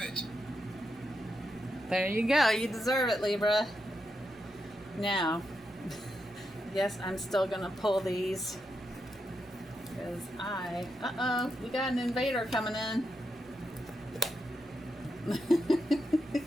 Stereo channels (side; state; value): both; normal; correlation 0.85